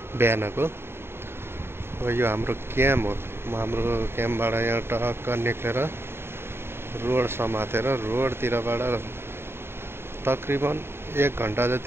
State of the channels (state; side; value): late; left; 0.11 ms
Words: बिहानको। यो हाम्रो क्याम्प हो। हाम्रो क्याम्पबाट यहाँ टक्क निक्लेर रोड समातेर रोडतिरबाट तकरिबन 1 घन्टा